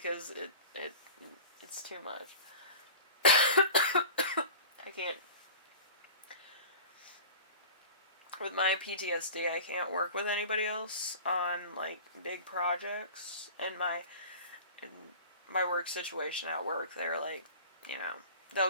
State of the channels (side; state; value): both; inverted; correlation -0.37